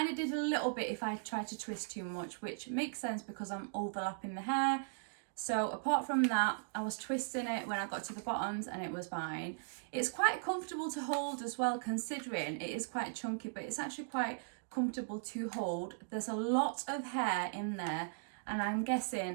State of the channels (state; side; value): silent; left; digital silence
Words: of did a little bit if I tried to twist too much, which makes sense because I'm overlapping the hair. So apart from that, I was twisting it when I got to the bottoms and it was fine. It's quite comfortable to hold as well, considering it is quite chunky, but it's actually quite comfortable to hold. There's a lot of hair in there, and I'm